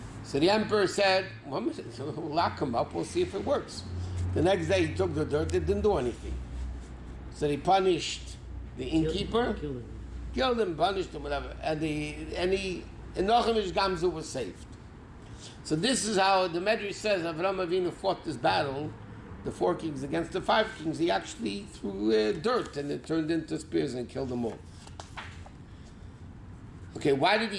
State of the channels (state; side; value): identical; both; correlation 1.00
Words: So the emperor said, well, we'll lock him up, we'll see if it works. The next day he took the dirt, it didn't do anything. So he punished the innkeeper, killed him, punished him, whatever, and Nochem Gamzu was saved. So this is how the Medrash says Avraham Avinu fought this battle, the 4 kings against the 5 kings. He actually threw dirt and it turned into spears and killed them all. Okay, why did